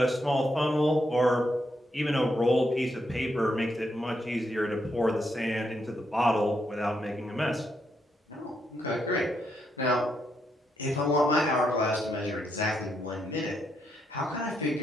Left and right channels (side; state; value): both; normal; correlation 0.79